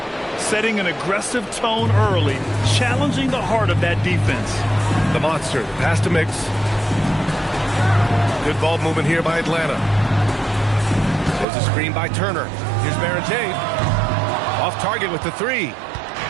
Setting an aggressive tone early, challenging the heart of that defense. The monster, pass to Mix. Good ball movement here by Atlanta. There's a screen by Turner. Here's Baron J. Off target with the 3.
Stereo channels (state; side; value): drops out; left; at 11.5 s